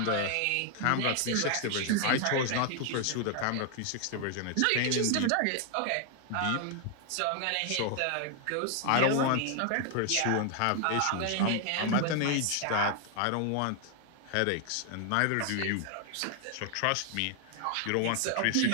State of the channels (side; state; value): both; different; correlation 0.00